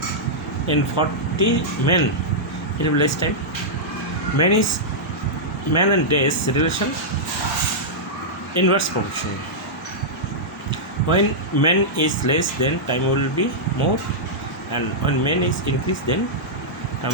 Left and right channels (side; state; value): both; normal; correlation -0.10